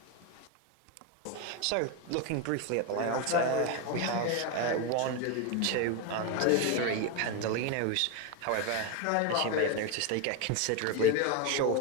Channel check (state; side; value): different; both; correlation 0.02